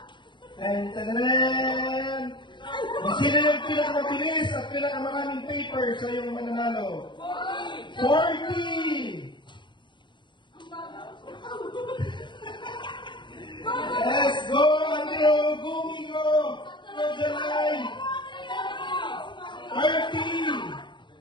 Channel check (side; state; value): right; late; 0.23 ms